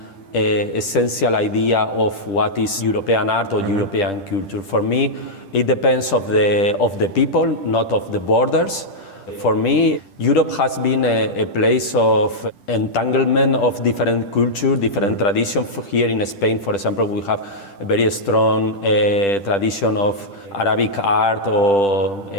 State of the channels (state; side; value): late; right; 10 ms